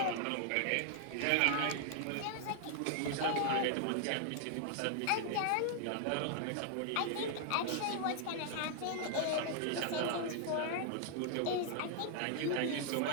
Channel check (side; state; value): both; different; correlation 0.00